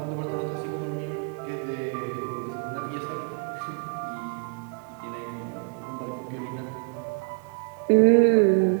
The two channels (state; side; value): quieter; left; 37.6 dB